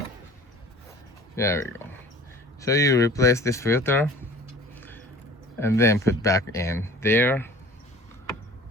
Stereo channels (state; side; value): normal; both; correlation 0.45